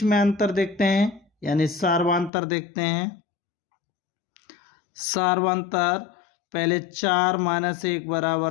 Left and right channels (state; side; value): drops out; right; at 2.3 s